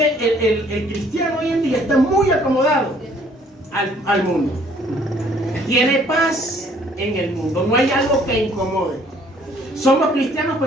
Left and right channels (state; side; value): normal; both; correlation 0.60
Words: el cristiano hoy en día está muy acomodado al mundo. Tiene paz en el mundo, no hay algo que incomode. Somos cristianos,